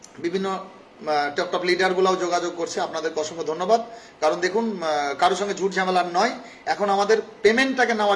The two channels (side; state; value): both; identical; correlation 1.00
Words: বিভিন্ন টপ লিডারগুলোও যোগাযোগ করছে, আপনাদেরকে অসংখ্য ধন্যবাদ। কারণ দেখুন, কারোর সঙ্গে ঝুট ঝামেলার নয়, এখন আমাদের পেমেন্টটাকে